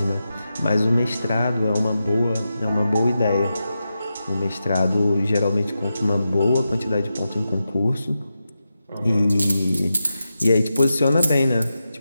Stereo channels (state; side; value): inverted; both; correlation -0.90